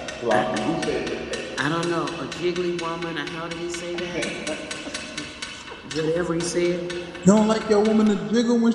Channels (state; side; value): identical; both; correlation 1.00